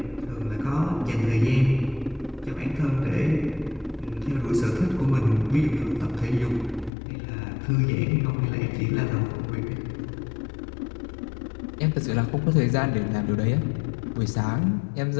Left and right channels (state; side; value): drops out; right; at 6.9 s